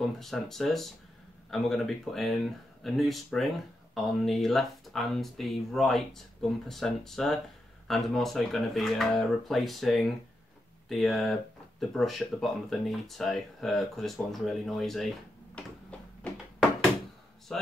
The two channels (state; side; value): normal; both; correlation 0.85